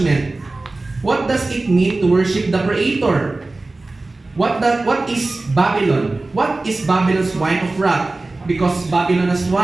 What does it mean to worship the Creator? What is Babylon? What is Babylon's wine of wrath? Because Babylon has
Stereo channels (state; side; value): quieter; left; 3.2 dB